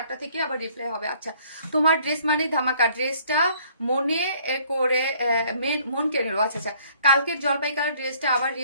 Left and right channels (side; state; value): both; inverted; correlation -0.60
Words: থেকে আবার রিপ্লাই হবে। আচ্ছা, তোমার ড্রেস মানে ধামাকা, ড্রেসটা মনে করে মন কেড়ে নিল। আচ্ছা আচ্ছা, কালকের জলপাই কালার ড্রেসটা আবার